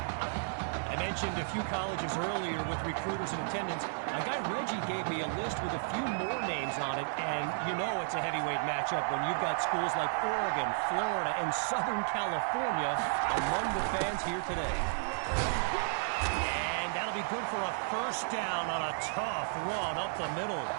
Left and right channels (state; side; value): silent; left; 56 dB below the other